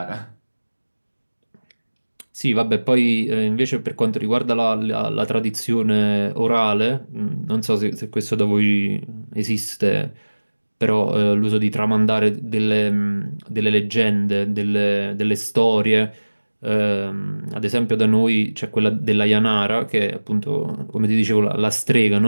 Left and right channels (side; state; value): both; inverted; correlation -1.00